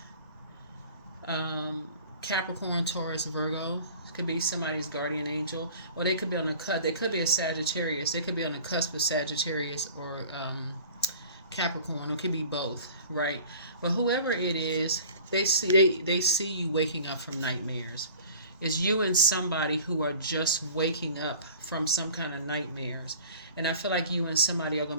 Capricorn, Taurus, Virgo could be somebody's guardian angel, or they could be on the cusp. They could be a Sagittarius. They could be on the cusp of Sagittarius or Capricorn. It could be both, right? But whoever it is, they see you waking up from nightmares. It's you and somebody who are just waking up from some kind of nightmares, and I feel like you and somebody are going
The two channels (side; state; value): both; inverted; correlation -0.44